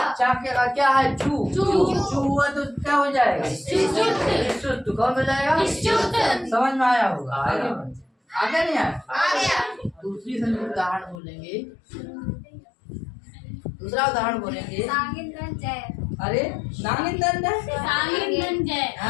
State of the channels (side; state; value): right; drops out; at 11.2 s